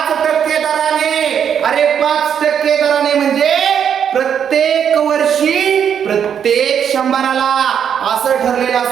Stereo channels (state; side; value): quieter; left; 8.2 dB